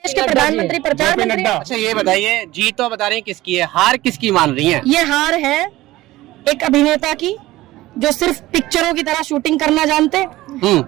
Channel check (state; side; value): quieter; left; 17.3 dB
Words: देश के प्रधानमंत्री प्रचार मंत्री। अच्छा ये बताइए, जीत तो बता रही हैं किसकी है, हार किसकी मान रही है? ये हार है एक अभिनेता की जो सिर्फ पिक्चरों की तरह शूटिंग करना जानते,